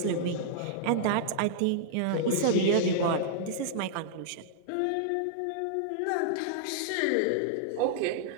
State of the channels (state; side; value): different; both; correlation -0.01